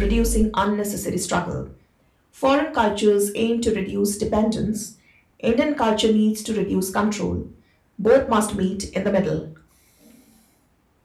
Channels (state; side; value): identical; both; correlation 1.00